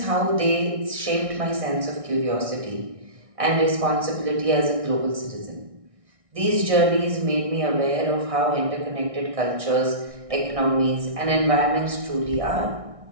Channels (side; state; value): left; late; 1.6 ms